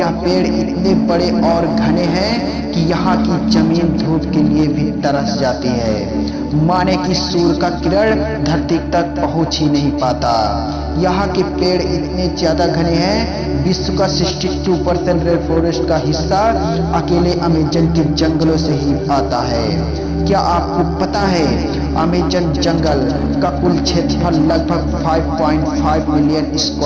पेड़ इतने बड़े और घने हैं कि यहाँ की जमीन धूप के लिए भी तरस जाती है। माने कि सूर्य का किरण धरती तक पहुंच ही नहीं पाता। यहाँ के पेड़ इतने ज्यादा घने हैं, विश्व का 62% रेन फॉरेस्ट का हिस्सा अकेले अमेज़न के जंगलों से ही आता है। क्या आपको पता है अमेज़न जंगल का कुल क्षेत्रफल लगभग 5.5 मिलियन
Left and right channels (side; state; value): both; identical; correlation 1.00